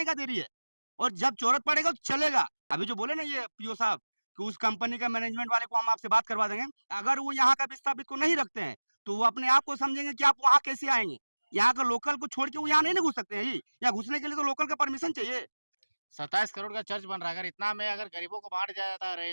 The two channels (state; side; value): inverted; both; correlation -1.00